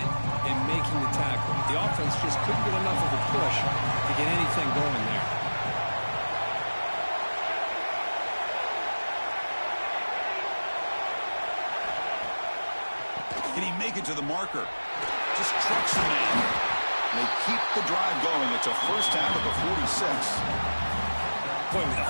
and making the tackle. The offense just couldn't get enough of a push to get anything going there. Can he make it to the marker? Just trucks the man. They keep the drive going. It's a first down at the 46. Boy, with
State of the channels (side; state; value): both; inverted; correlation -1.00